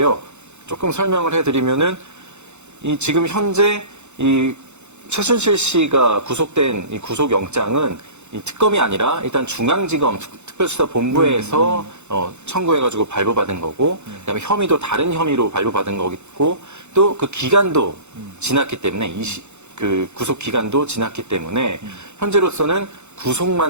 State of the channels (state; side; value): late; left; 0.82 ms